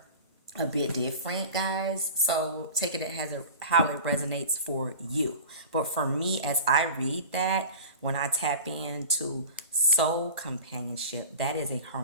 a bit different, guys. So take it as how it resonates for you. But for me, as I read that, when I tap into soul companionship, that is a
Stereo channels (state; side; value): inverted; both; correlation -0.36